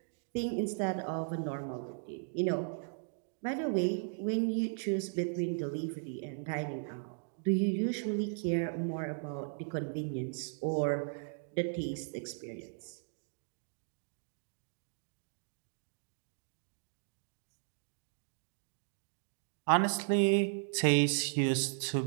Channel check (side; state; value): left; silent; digital silence